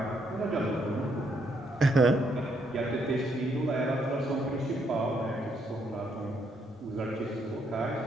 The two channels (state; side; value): normal; both; correlation 0.73